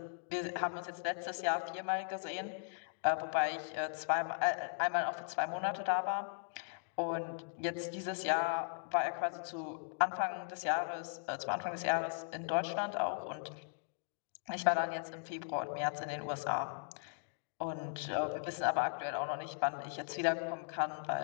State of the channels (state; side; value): silent; right; digital silence